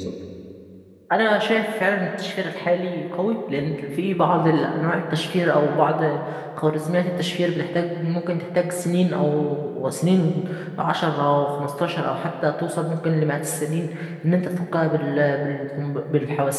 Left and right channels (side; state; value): both; identical; correlation 1.00